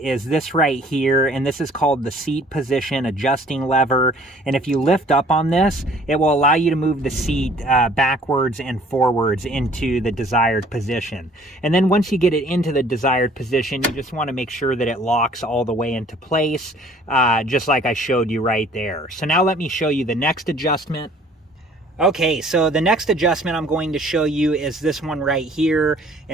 this right here, and this is called the seat position adjusting lever. And if you lift up on this, it will allow you to move the seat backwards and forwards into the desired position. And then once you get it into the desired position, you just want to make sure that it locks all the way into place, just like I showed you right there. So now let me show you the next adjustment. Okay, so the next adjustment I'm going to show you is this one right here,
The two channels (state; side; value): normal; both; correlation 0.55